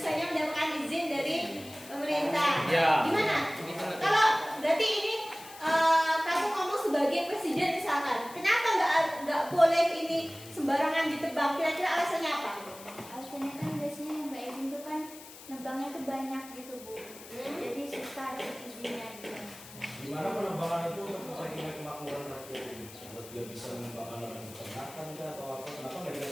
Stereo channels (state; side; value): noise; left; hiss, 17 dB below the sound